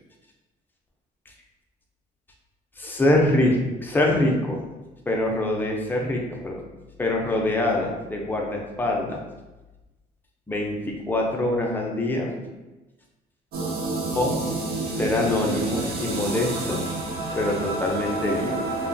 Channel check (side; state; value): both; normal; correlation 0.55